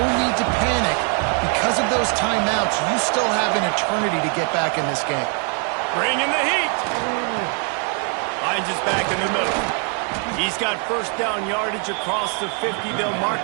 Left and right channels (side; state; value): left; quieter; 39.2 dB